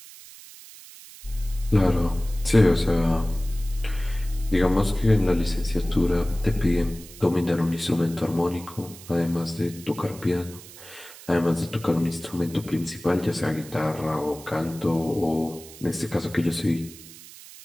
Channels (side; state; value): right; noise; hiss, 18 dB below the sound